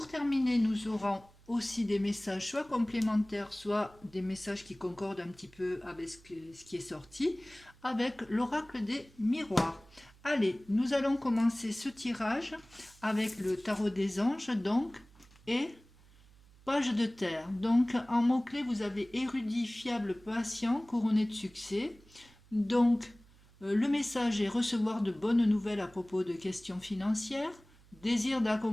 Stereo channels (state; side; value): noise; right; hum, 26 dB below the sound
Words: terminer, nous aurons aussi des messages soit complémentaires, soit des messages qui concordent un petit peu avec ce qui est sorti, avec l'oracle des miroirs. Allez, nous allons commencer ce tirage avec le tarot des anges, donc, et page de terre. Donc, en mots-clés, vous avez érudit, fiable, patient, couronné de succès. Donc, le message est recevoir de bonnes nouvelles à propos de questions financières, désir